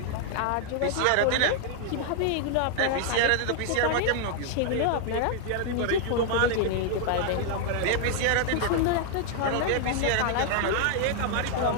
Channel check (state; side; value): different; both; correlation 0.00